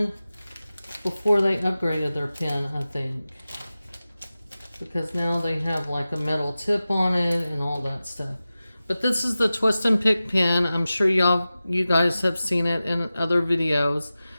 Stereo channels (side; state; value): both; inverted; correlation -0.95